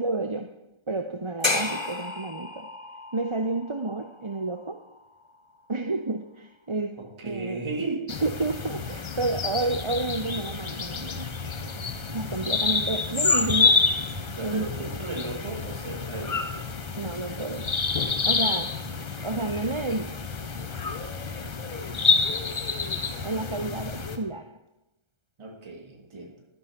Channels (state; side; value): late; left; 1.3 ms